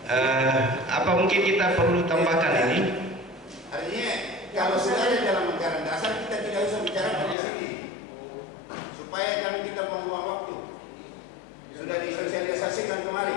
Apa mungkin kita perlu tambahkan ini? Artinya kalau sudah ada dalam anggaran dasar kita tidak usah bicara di sini, supaya kami kita membuang waktu. Sudah disosialisasikan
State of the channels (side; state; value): right; drops out; at 7.4 s